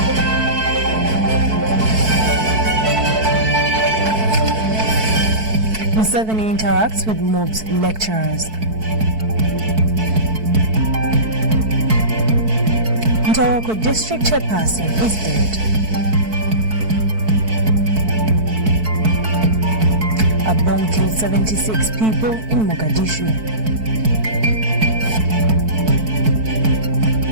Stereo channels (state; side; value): late; left; 4.6 ms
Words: Museveni interacts with MOBS lecturers. Ntoroko district chairperson is dead. A bomb killed 76 people in Mogadishu.